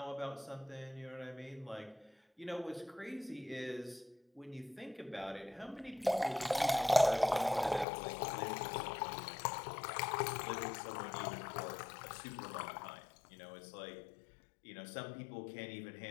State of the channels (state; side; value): drops out; right; at 7.9 s